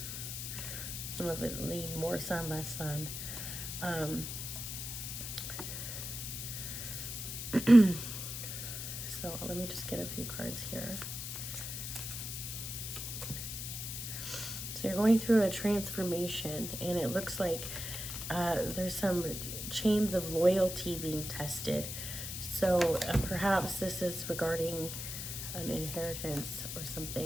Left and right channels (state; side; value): noise; left; hiss, 6 dB below the sound